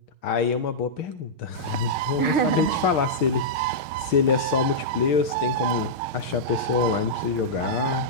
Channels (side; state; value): right; late; 6.5 ms